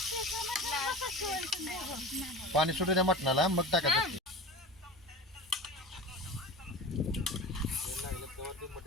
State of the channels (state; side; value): normal; both; correlation 0.32